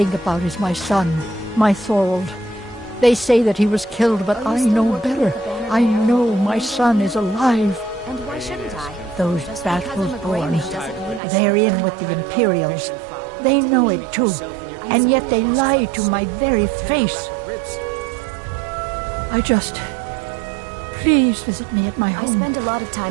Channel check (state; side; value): drops out; left; at 11.2 s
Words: about is my son, my Thorold. They say that he was killed, but I know better. I know my son is alive. And why shouldn't I? Those Battleborn, they're in with the Imperials. They know it too, and yet they lie to my very face. Please visit me at my home. I spend a lot of